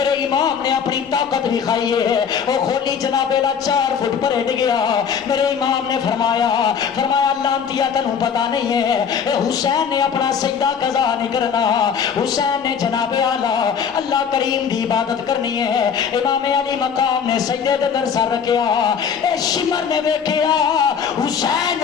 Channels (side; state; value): right; quieter; 7.0 dB